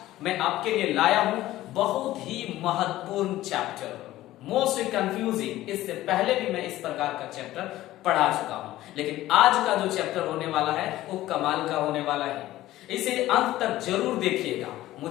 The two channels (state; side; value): quieter; right; 15.4 dB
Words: मैं आपके लिए लाया हूं बहुत ही महत्वपूर्ण चैप्टर, मोस्ट कंफ्यूजिंग। इससे पहले भी मैं इस प्रकार का चैप्टर पढ़ा चुका हूं, लेकिन आज का जो चैप्टर होने वाला है वो कमाल का होने वाला है। इसे अंत तक जरूर देखिएगा।